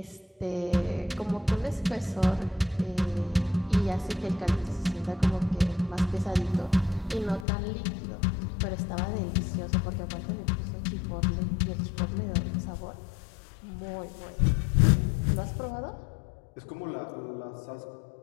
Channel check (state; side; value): drops out; right; at 7.5 s